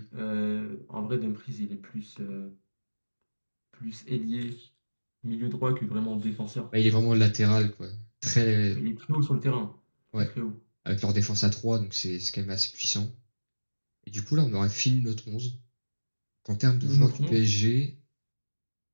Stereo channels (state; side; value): inverted; both; correlation -1.00